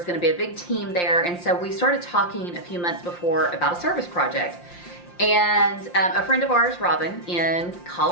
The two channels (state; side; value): late; right; 5.7 ms